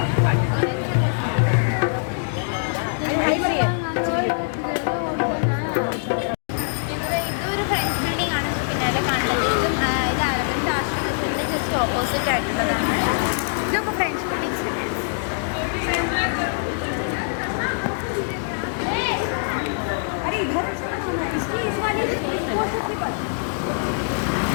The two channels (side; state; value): right; silent; digital silence